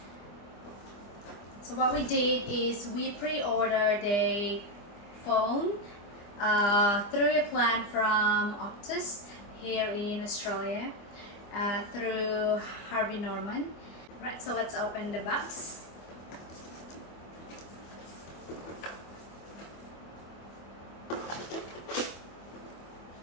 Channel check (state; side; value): late; right; 25 ms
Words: So what we did is we pre-ordered a phone through a plan from Optus here in Australia, through Harvey Norman. Right, so let's open the box.